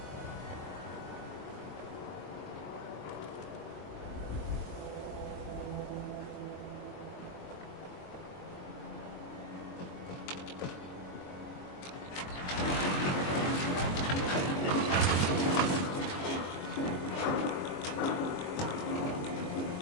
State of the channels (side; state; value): right; late; 22 ms